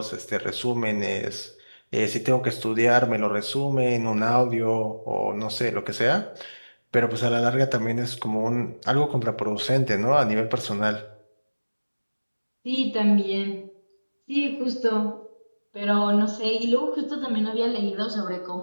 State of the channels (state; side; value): inverted; both; correlation -1.00